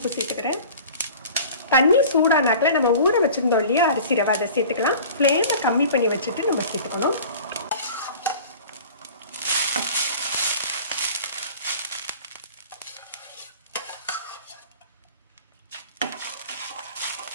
சேர்த்துக்கிறேன். தண்ணி சூடானாக்கில் நம்ம ஊற வச்சுருந்தோம் இல்லையா அரிசி ரவை, அதை சேர்த்துக்கலாம். ஃப்ளேமை கம்மி பண்ணி வச்சுட்டு நம்ம சேர்த்துக்கணும்.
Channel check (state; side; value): inverted; both; correlation -0.42